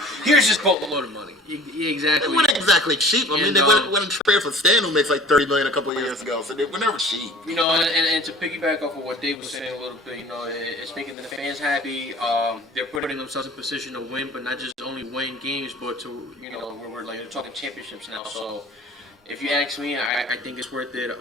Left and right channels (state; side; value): normal; both; correlation 0.45